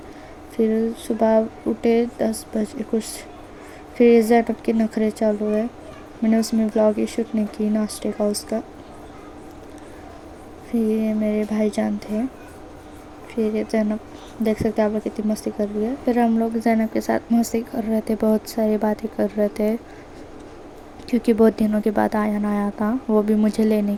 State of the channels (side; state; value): both; identical; correlation 1.00